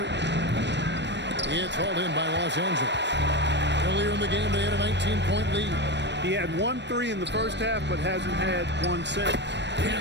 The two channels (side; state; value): left; late; 0.51 ms